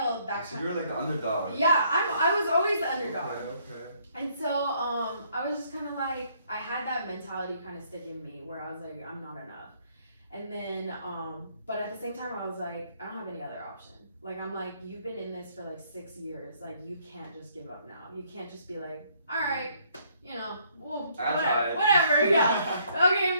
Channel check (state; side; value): inverted; both; correlation -0.66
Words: so you're like the underdog. Yeah, I was always the underdog. Okay. And so I was just kind of like, I had that mentality kind of stick in me where I was like, I'm not enough. And then, but at the same time, I was like, I don't have any other option. Like, I'm like, you've been in this for like 6 years. Like, you can't just give up now. You can't just be like, all right, well, whatever, yeah. Okay,